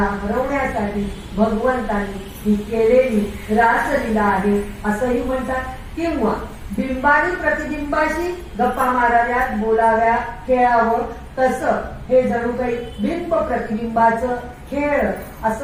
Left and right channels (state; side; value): identical; both; correlation 1.00